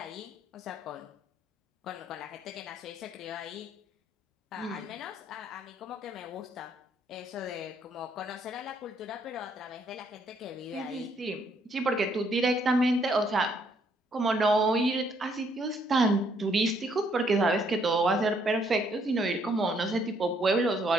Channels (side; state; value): both; normal; correlation 0.69